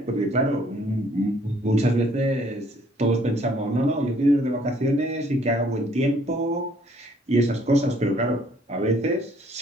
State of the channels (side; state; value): both; normal; correlation 0.62